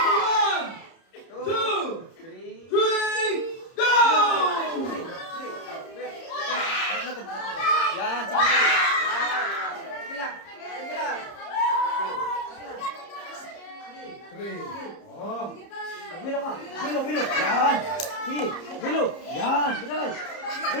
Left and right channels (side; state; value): right; late; 30 ms